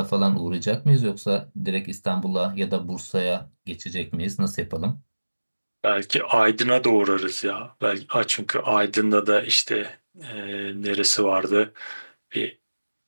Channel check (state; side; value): inverted; both; correlation -1.00